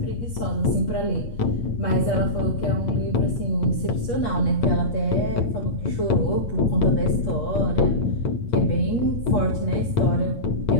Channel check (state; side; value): late; right; 8.4 ms